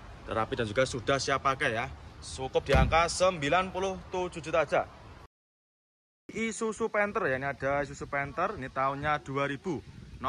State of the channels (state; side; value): identical; both; correlation 1.00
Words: Rapi dan juga sudah siap pakai ya. Cukup di angka 97 juta aja. Isuzu Panther ya, ini ada Isuzu Panther. Ini tahunnya 2000.